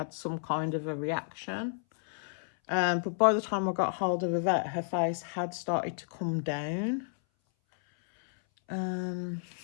some kind of a reaction. But by the time I got hold of the vet, her face had started to come down.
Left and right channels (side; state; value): right; silent; 57 dB below the other